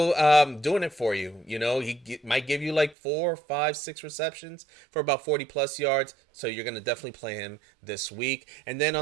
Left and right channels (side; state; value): left; drops out; at 3.0 s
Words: doing it for you. He might give you like 4, 5, 6 receptions for about 40-plus yards. So you're going to definitely play him this week. And then